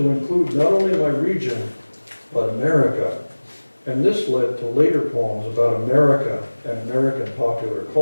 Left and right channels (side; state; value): both; inverted; correlation -1.00